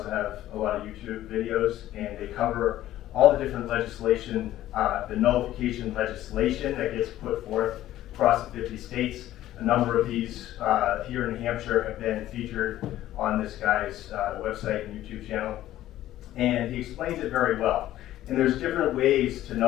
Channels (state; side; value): quieter; right; 13.8 dB